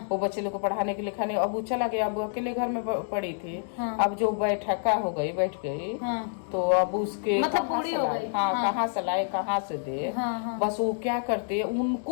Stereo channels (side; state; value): right; silent; digital silence